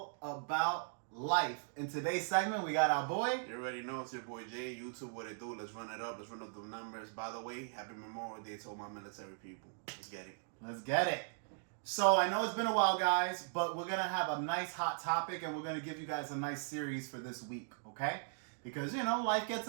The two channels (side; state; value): left; silent; digital silence